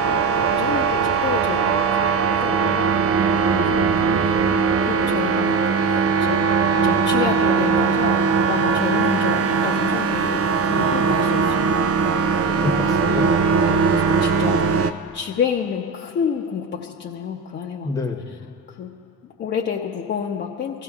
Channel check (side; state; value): left; quieter; 3.6 dB